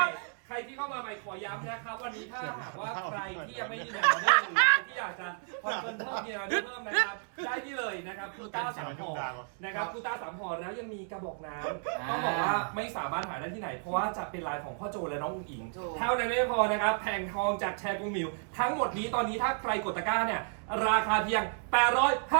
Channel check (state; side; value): silent; left; 56 dB below the other